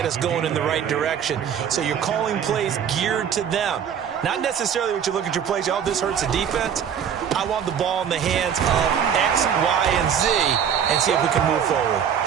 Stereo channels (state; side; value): quieter; left; 8.2 dB